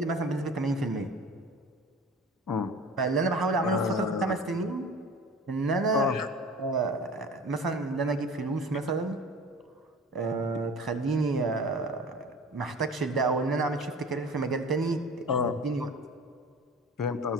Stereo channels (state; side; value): normal; both; correlation 0.40